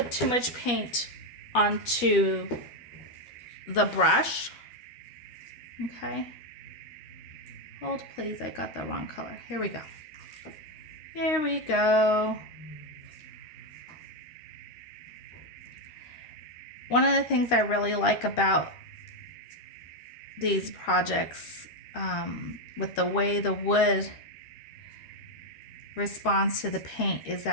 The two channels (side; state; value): right; late; 13 ms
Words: too much paint onto the brush. Okay. Hold please, I got the wrong color. Here we go. Here we go. One of the things I really like about these projects, with the way the wood responds to the paint, is